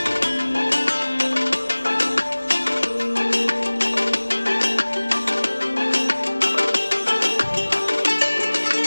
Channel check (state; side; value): inverted; both; correlation -1.00